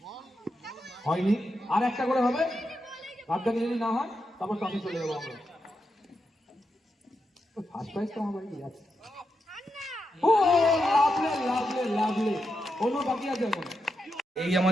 হয়নি, আর একটা করে হবে। ভাগ্যে যদি না হয় তারপর টসে চলে যাবো আমরা। ফার্স্ট প্রাইজ তো আমার কি আছে। ও লাভলি কোনো বাকি আছে এখন। এই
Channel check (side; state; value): both; normal; correlation 0.86